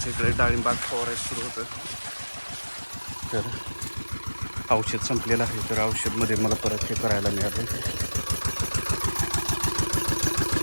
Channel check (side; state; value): both; inverted; correlation -1.00